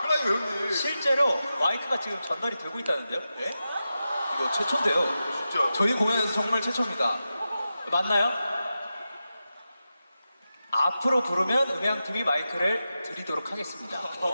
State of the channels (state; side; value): inverted; both; correlation -0.92